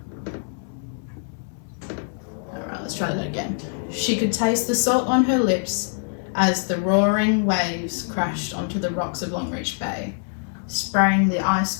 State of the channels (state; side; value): silent; right; digital silence